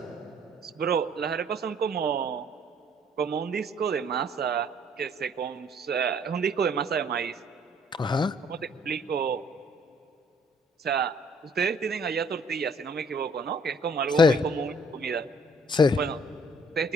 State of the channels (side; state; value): both; normal; correlation 0.60